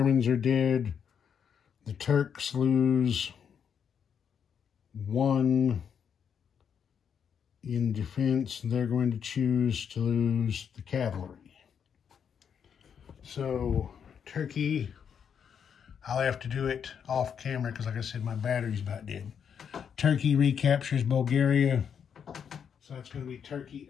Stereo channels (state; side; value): quieter; right; 7.6 dB